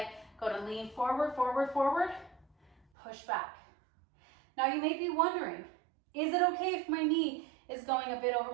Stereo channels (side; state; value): left; drops out; at 2.9 s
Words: go to lean forward, forward, forward, push back. Now you may be wondering, is it okay if my knee is going a bit over